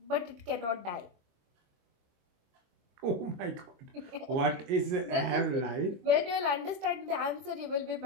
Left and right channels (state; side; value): late; left; 22 ms